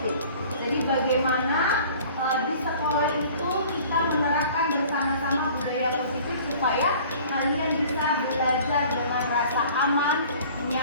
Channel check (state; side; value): inverted; both; correlation -0.48